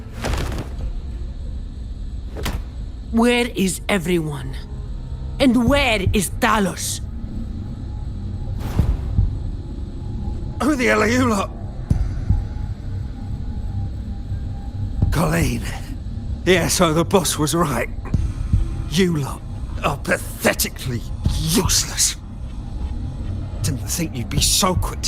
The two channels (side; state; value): both; identical; correlation 1.00